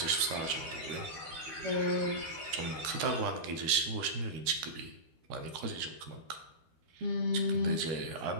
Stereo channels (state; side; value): late; left; 13 ms